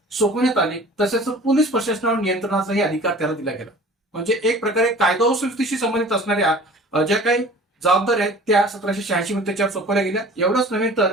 सोपवण्यात आले. तसेच पोलीस प्रशासनावर नियंत्रणाचाही अधिकार त्याला दिला गेला. म्हणजे एक प्रकारे कायदा व सुव्यवस्थेशी संबंधित असणाऱ्या ज्या काही जबाबदाऱ्या आहेत त्या 1786 मध्ये त्याच्यावर सोपवल्या गेल्या. एवढंच नव्हे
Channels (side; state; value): both; normal; correlation 0.45